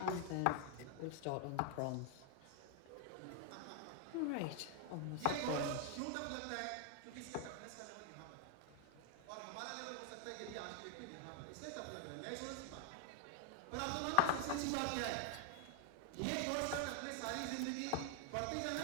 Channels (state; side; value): different; both; correlation 0.00